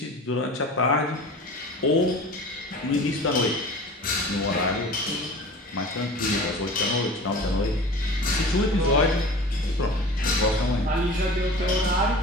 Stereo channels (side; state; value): both; normal; correlation 0.39